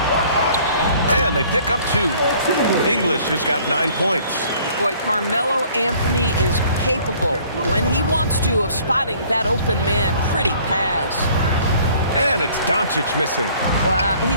And they pick up 2. English has got 9 points. Boy, Carmelo Anthony is capable, when he wants to, of spotting that open man. Pretty pass. And it's Doncic missing. Well,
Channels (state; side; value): inverted; both; correlation -0.56